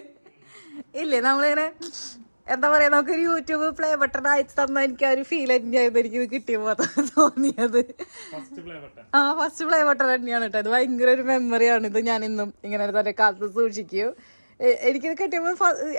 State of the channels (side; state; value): both; inverted; correlation -1.00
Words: ഇല്ലേ? നമ്മളിങ്ങനെ എന്താ പറയാ, നമുക്കൊരു യൂട്യൂബ് പ്ലേ ബട്ടൺ അയച്ചു തന്ന എനിക്ക് ആ ഒരു ഫീൽ തന്നെയായിരുന്നു എനിക്കിത് കിട്ടിയപ്പോ തോന്നിയത്. ഫസ്റ്റ് പ്ലേ ബട്ടൺ തന്നെയാണ് കേട്ടോ. അത് ഭയങ്കര ഒരു മെമ്മറിയാണ്. ഇത് ഞാൻ ഇന്നും ഇങ്ങനെ തന്നെ കാലത്ത് സൂക്ഷിക്കും. എനിക്കിത് കിട്ടിയപ്പോ